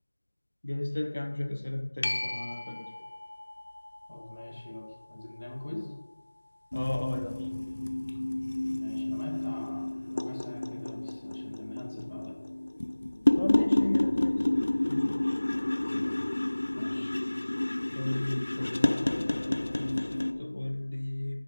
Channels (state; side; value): inverted; both; correlation -1.00